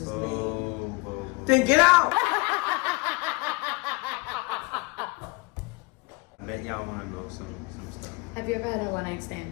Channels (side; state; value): right; quieter; 27.0 dB